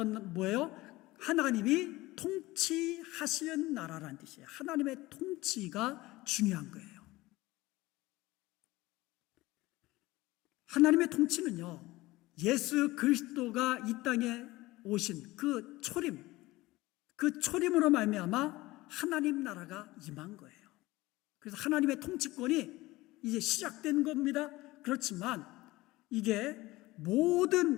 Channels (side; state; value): right; quieter; 19.4 dB